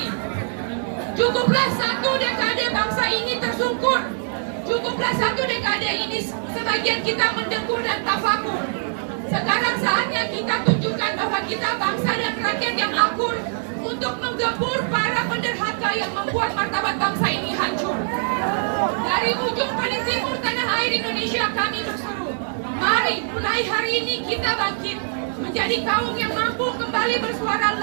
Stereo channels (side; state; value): left; silent; digital silence